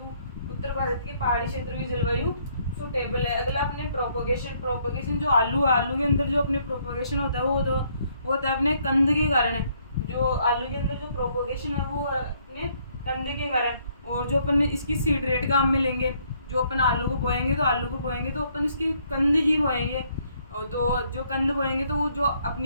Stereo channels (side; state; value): both; inverted; correlation -0.68